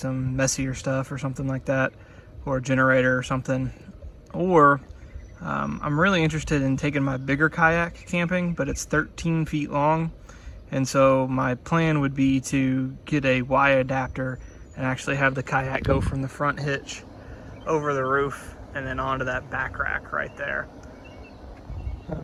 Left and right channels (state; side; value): identical; both; correlation 1.00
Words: messier stuff or something like that, or a generator or something. Or I'm really interested in taking my bigger kayak camping, but it's 13 feet long. And so my plan would be to get a Y adapter and actually have the kayak go from the front hitch over the roof and then onto that back rack right there.